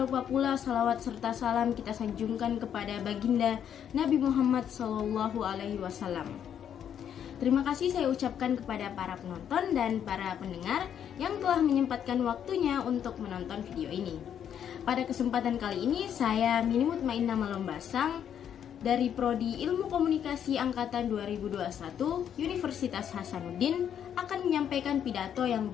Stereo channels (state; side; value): quieter; right; 9.1 dB